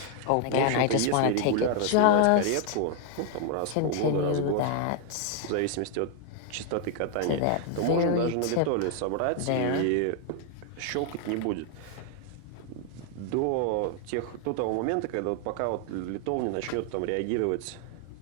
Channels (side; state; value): both; different; correlation 0.00